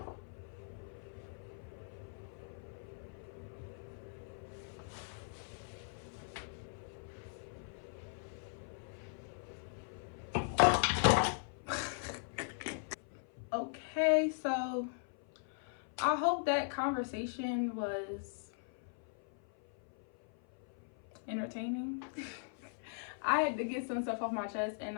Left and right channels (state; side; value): silent; right; 52 dB below the other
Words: I hope that conversation was entertaining. I had to get some stuff off my chest, and